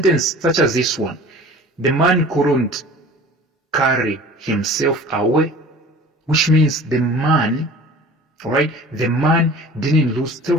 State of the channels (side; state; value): both; normal; correlation 0.43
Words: such as this one. The man couldn't carry himself away, which means the man, alright, the man didn't lose